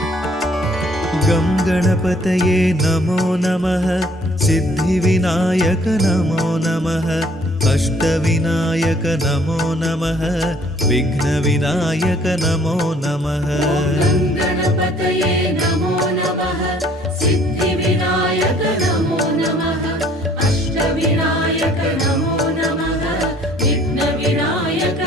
गणपतये नमो नमः सिद्धिविनायक नमो नमः अष्टविनायक नमो नमः विघ्नविनायक नमो नमः गणपतये नमो नमः सिद्धिविनायक नमो नमः अष्टविनायक नमो नमः विघ्नविनायक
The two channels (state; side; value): normal; both; correlation 0.59